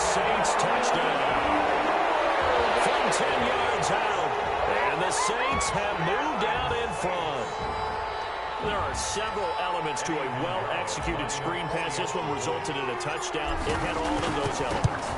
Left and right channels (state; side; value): identical; both; correlation 1.00